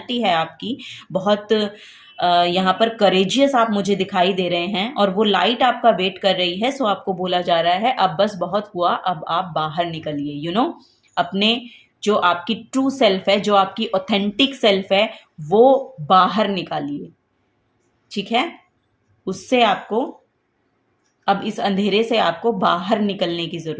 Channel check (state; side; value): identical; both; correlation 1.00